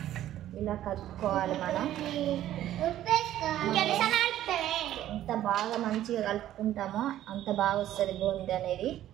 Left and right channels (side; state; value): left; quieter; 12.7 dB